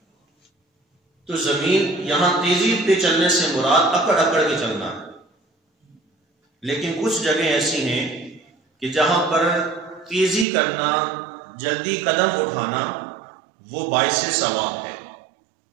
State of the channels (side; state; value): left; drops out; at 10.5 s